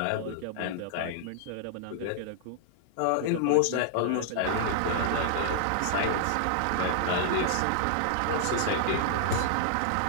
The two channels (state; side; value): different; both; correlation -0.01